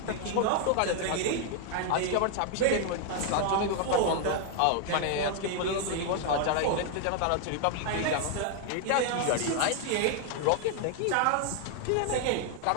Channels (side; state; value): both; different; correlation 0.00